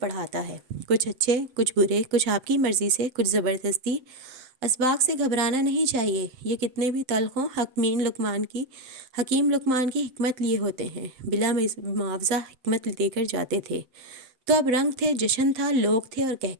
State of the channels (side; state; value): left; late; 7.7 ms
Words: ہے. کچھ اچھے، کچھ برے، کچھ آپ کی مرضی سے، کچھ زبردستی. اسباق سے گھبرانا نہیں چاہیے. یہ کتنے بھی تلخ ہوں، حکیم لقمان کی حکمت لیے ہوتے ہیں. بلا معاوضہ حکمت دے کر جاتے تھے. تو اب رنگ تھے، جشن تھا، لوگ تھے اور